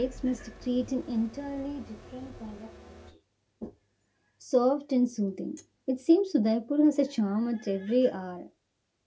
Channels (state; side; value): identical; both; correlation 1.00